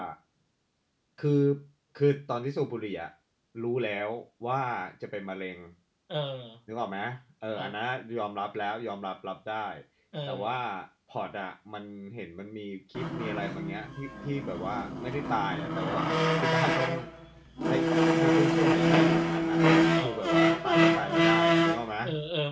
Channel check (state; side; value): identical; both; correlation 1.00